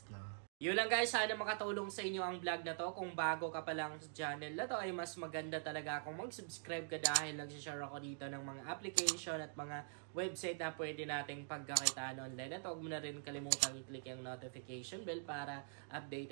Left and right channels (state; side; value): silent; left; digital silence